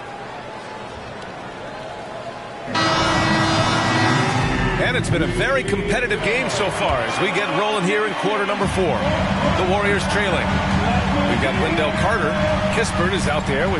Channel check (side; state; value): both; identical; correlation 1.00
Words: And it's been a very competitive game so far as we get rolling here in quarter number 4. The Warriors trailing. We've got Wendell Carter. Kispert is out there